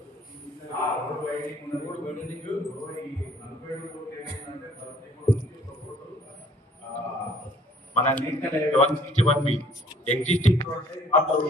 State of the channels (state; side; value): normal; both; correlation 0.58